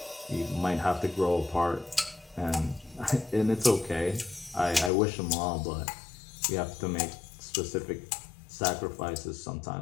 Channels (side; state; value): right; drops out; at 4.9 s